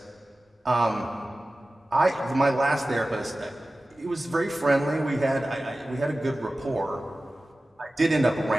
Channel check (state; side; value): normal; both; correlation 0.96